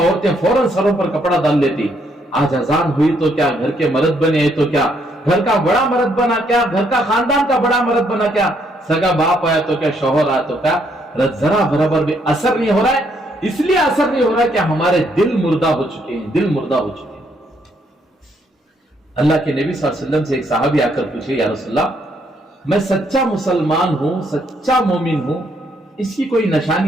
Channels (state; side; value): normal; both; correlation 0.72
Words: फौरन सरों पर कपड़ा डाल लेती। आज अजान हुई तो क्या घर के मर्द बने हैं तो क्या, घर का बड़ा मर्द बना क्या, घर का खानदान का बड़ा मर्द बना क्या, सगा बाप आया तो क्या, शौहर आया तो क्या, जरा बराबर भी असर नहीं हो रहा है। इसलिए असर नहीं हो रहा है कि हमारे दिल मुर्दा हो चुके हैं, दिल मुर्दा हो चुके हैं। अल्लाह के नबी सल्लल्लाहु अलैहि वसल्लम से एक सहाबी आकर पूछे, या रसूलल्लाह, मैं सच्चा मुसलमान हूं, सच्चा मोमिन हूं, इसकी कोई